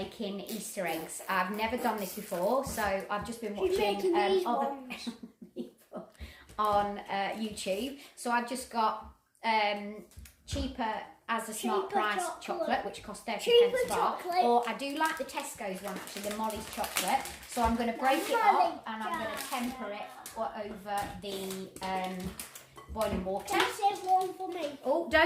Easter eggs. I've never done this before, so I've just been watching other people on YouTube. So I've just got cheaper as a smart price chocolate, which costs 30 pence a bar. Or I do like the Tesco's one actually, the Molly's chocolate. So I'm going to break it up and I'm going to temper it over the boiling water. There's one for me. Oh,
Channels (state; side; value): identical; both; correlation 1.00